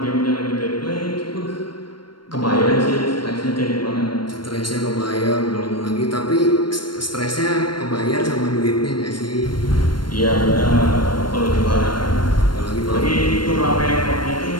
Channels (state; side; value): late; right; 0.72 ms